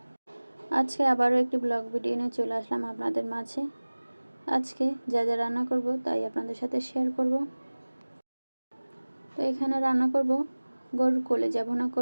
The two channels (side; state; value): both; inverted; correlation -1.00